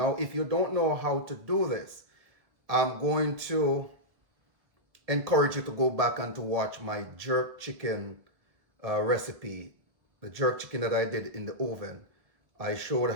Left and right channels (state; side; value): late; left; 1.7 ms